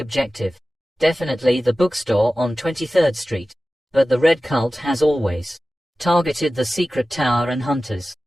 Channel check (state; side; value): normal; both; correlation 0.96